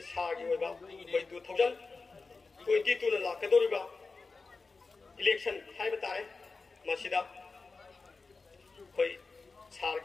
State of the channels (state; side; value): quieter; right; 4.1 dB